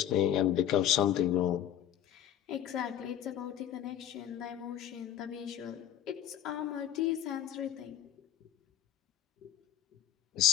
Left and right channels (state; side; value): quieter; right; 10.8 dB